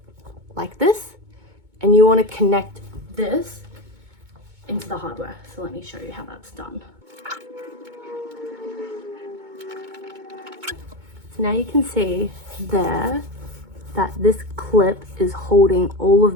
like this, and you want to connect this into the hardware. So let me show you how that's done. So now you can see there that this clip is holding all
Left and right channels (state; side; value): late; left; 2.2 ms